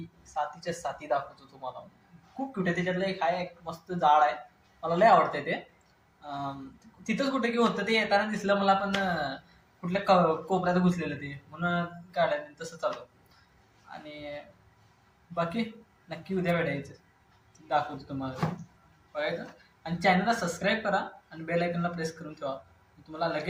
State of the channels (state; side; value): identical; both; correlation 1.00